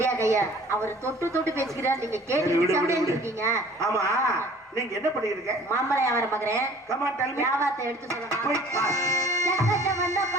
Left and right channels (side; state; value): both; normal; correlation 0.50